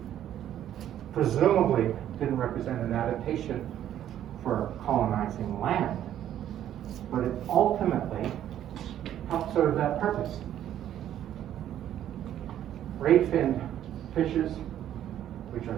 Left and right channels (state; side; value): quieter; left; 11.2 dB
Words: presumably didn't represent an adaptation for colonizing land, but it ultimately helped serve that purpose. Ray-finned fishes, which are